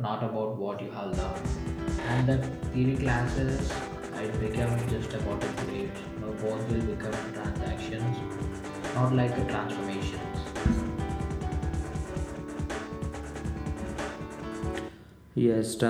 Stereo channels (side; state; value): both; identical; correlation 1.00